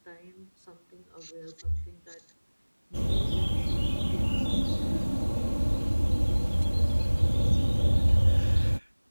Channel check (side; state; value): both; inverted; correlation -1.00